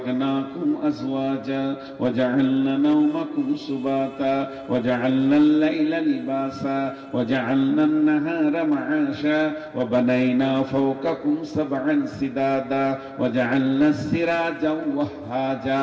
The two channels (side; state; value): both; identical; correlation 1.00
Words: আজওয়াজা ওয়া জাআলনা নাওমাকুম সুবাতা ওয়া জাআলনাল লাইলা লিবাসা ওয়া জাআলনান নাহারা মাআশা ওয়া বানাইনা ফাওকাকুম সাবআন সিদাদা ওয়া জাআলনাস সিরাজা ওয়াহাজা